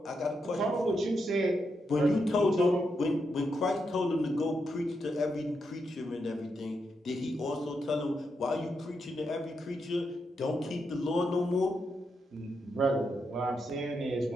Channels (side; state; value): both; normal; correlation 0.83